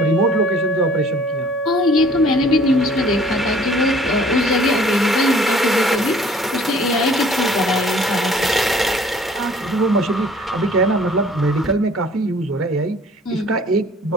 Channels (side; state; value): both; normal; correlation 0.54